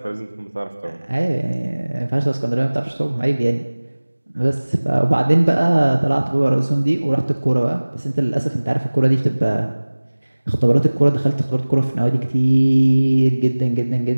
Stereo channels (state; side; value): inverted; both; correlation -1.00